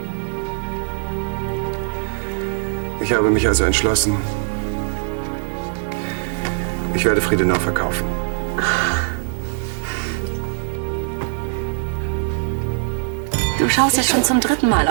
Ich habe mich also entschlossen, Ich werde Friedenau verkaufen. Du schaust jetzt schon zum 3. Mal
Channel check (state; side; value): silent; left; 61 dB below the other